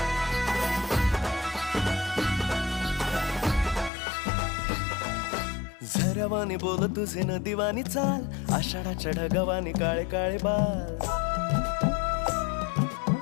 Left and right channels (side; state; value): right; drops out; at 3.9 s